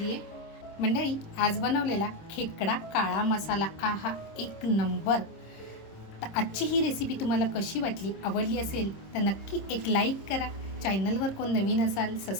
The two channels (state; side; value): late; right; 26 ms